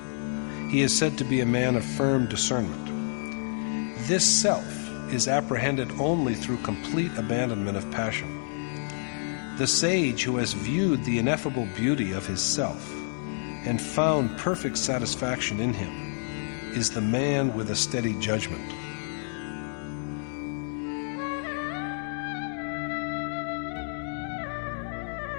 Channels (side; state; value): right; silent; 59 dB below the other